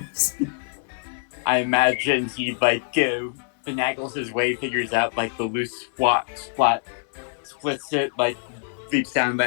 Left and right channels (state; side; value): silent; right; 62 dB below the other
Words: I imagine he finagles his way, figures out like the loose splat, splits it, like leaps down,